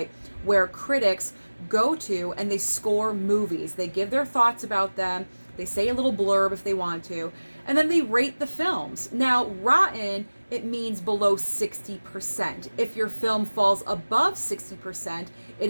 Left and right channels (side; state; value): both; inverted; correlation -1.00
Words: where critics go to and they score movies. They give their thoughts about them, they say a little blurb if they want to, and then they rate the films. Now, rotten, it means below 60%. If your film falls above 60%,